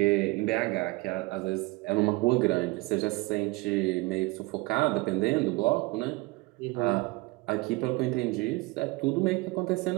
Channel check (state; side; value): quieter; left; 23.3 dB